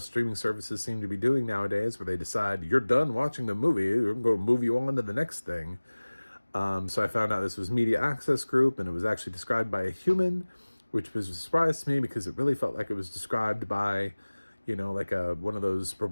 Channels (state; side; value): inverted; both; correlation -1.00